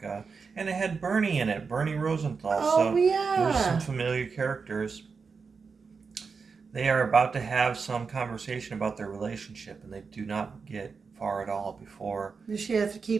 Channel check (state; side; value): quieter; left; 5.2 dB